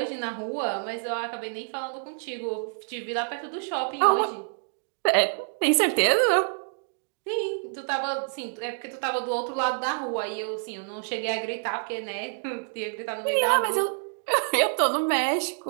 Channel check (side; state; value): left; silent; digital silence